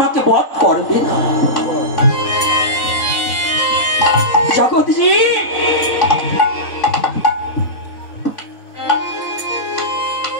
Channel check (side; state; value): right; late; 3.6 ms